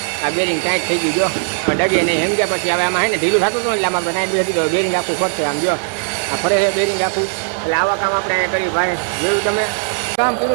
આ બેરિંગ ટાઈટ થઈ ગયું જો ડગે નહીં સમજ્યા. પછી હવે આમાં હે ને ઢીલું થતું હતું એટલે આમાં ટાઈટ બેસી દીધો બેરિંગ આખું ફરશે આમ જો આ ફરે છે બેરિંગ આખું. એટલે આવા કામ આપણે અહીંયા કર્યું ભાઈ જોયું તમે કામ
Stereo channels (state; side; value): silent; left; 57 dB below the other